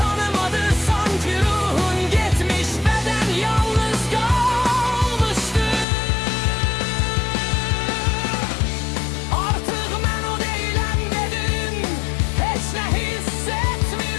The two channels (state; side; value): drops out; right; at 5.9 s